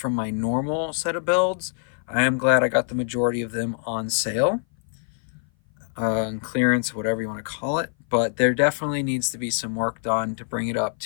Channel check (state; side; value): silent; right; 57 dB below the other